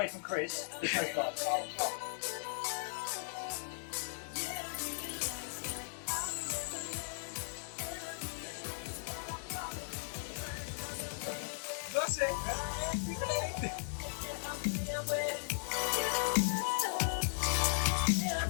from Chris, there's no flies.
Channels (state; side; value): silent; right; digital silence